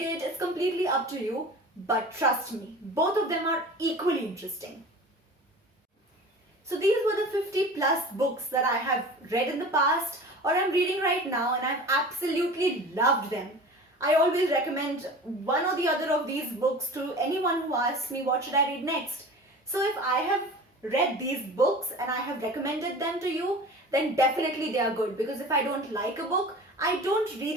it, it's completely up to you. But trust me, both of them are equally interesting. So these were the 50 plus books that I have read in the past or I'm reading right now, and I've absolutely loved them. I always recommend one or the other of these books to anyone who asks me what should I read next. So if I have read these books and I have recommended them to you, then definitely they are good, because if I don't like a book, I don't read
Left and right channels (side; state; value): both; normal; correlation 0.38